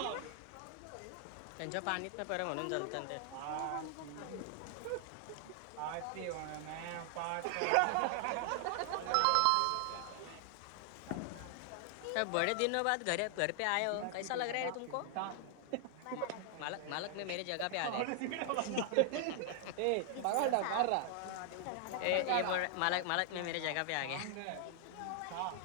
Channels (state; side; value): different; both; correlation 0.00